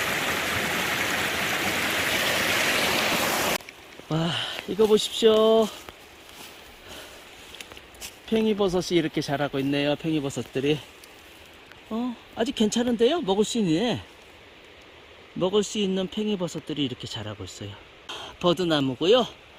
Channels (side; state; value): both; identical; correlation 1.00